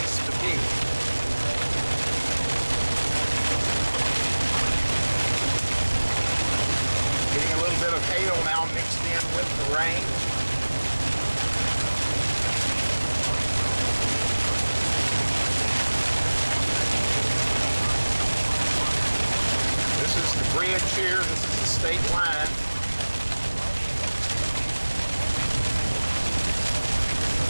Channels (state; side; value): inverted; both; correlation -1.00